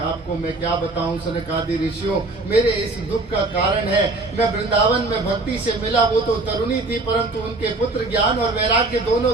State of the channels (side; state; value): left; quieter; 3.1 dB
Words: मैं क्या बताऊं सनकादि ऋषियों, मेरे इस दुख का कारण है मैं वृंदावन में भक्ति से मिला, वो तो तरुणी थी परंतु उनके पुत्र ज्ञान और वैराग्य दोनों